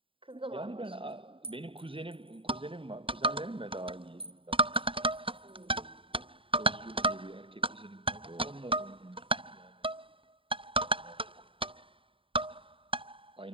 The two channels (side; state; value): left; late; 0.26 ms